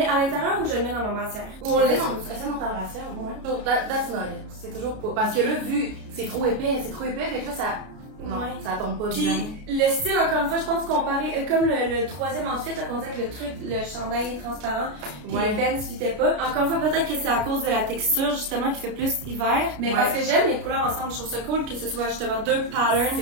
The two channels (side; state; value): left; late; 32 ms